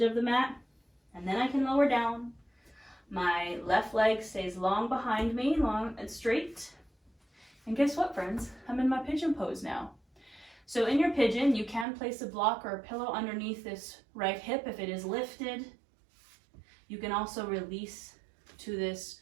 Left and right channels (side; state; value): left; drops out; at 11.9 s